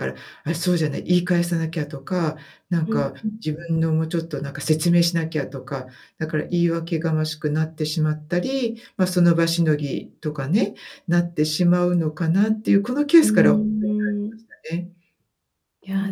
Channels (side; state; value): both; identical; correlation 1.00